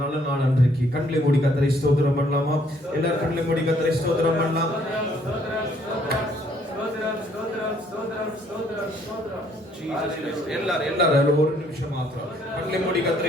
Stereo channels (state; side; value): normal; both; correlation 0.65